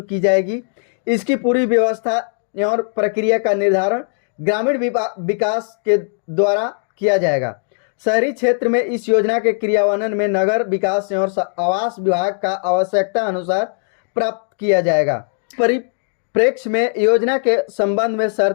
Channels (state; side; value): silent; right; 67 dB below the other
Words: की जाएगी। इसकी पूरी व्यवस्था और प्रक्रिया का निर्धारण ग्रामीण विकास के द्वारा किया जाएगा। शहरी क्षेत्र में इस योजना के क्रियान्वयन में नगर विकास और आवास विभाग का आवश्यकता अनुसार प्राप्त किया जाएगा। परिप्रेक्ष्य में योजना के संबंध में